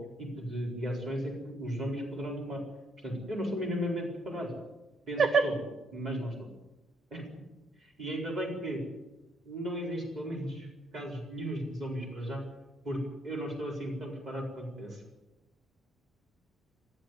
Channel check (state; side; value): normal; both; correlation 0.71